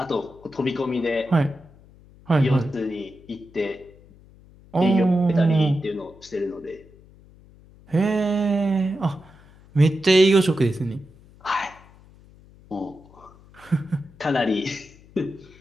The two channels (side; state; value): left; noise; hum, 25 dB below the sound